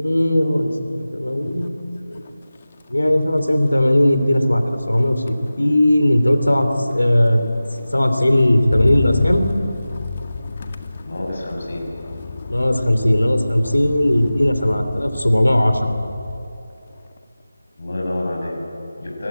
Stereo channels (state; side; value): inverted; both; correlation -0.96